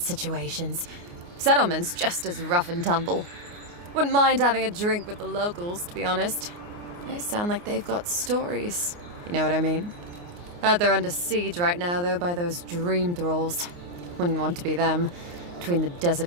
situations. Settlement's just as rough and tumble. Wouldn't mind having a drink with the locals, to be honest. They sound like they've got stories. You know what I mean? Heard they're under siege right now, though, by those dream thralls. Wouldn't want to be them, between the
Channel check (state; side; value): late; left; 29 ms